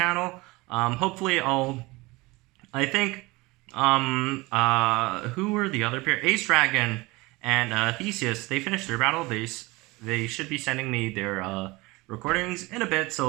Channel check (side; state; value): left; quieter; 22.8 dB